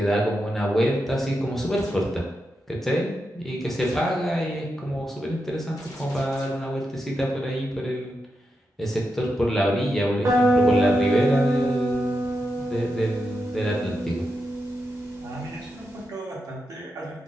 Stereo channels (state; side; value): normal; both; correlation 0.87